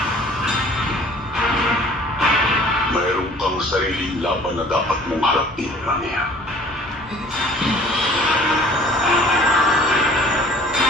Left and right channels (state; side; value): normal; both; correlation 0.51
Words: mayroon kang sariling laban na dapat mong harapin, Amiya.